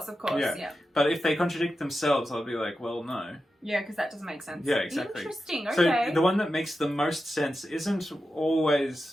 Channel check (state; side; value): normal; both; correlation 0.91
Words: yeah. But if they contradict themselves, I'll be like, well, no. Yeah, because that doesn't make sense. Yeah, exactly. Interesting. Okay. So the one that makes the most sense isn't